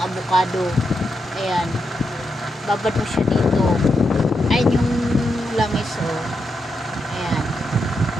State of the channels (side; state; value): both; normal; correlation 0.84